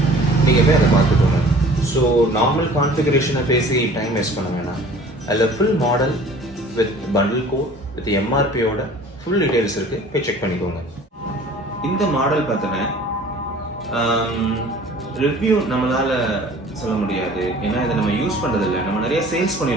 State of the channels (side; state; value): both; normal; correlation 0.48